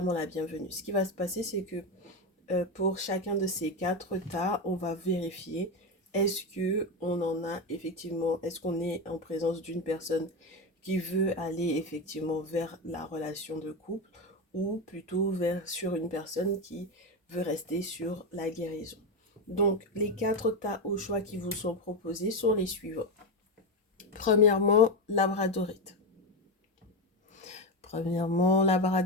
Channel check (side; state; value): both; normal; correlation 0.13